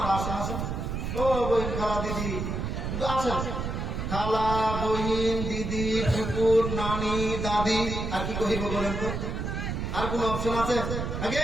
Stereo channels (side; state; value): right; noise; rumble, 3 dB below the sound